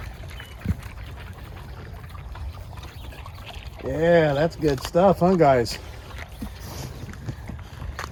Yeah, that's good stuff, huh, guys?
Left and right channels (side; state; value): both; identical; correlation 1.00